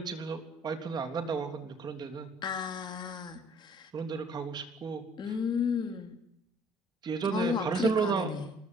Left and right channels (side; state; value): both; normal; correlation 0.57